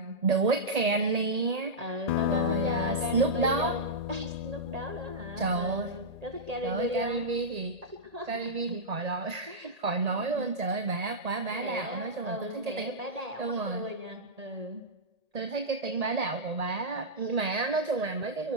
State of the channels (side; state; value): left; late; 1.8 ms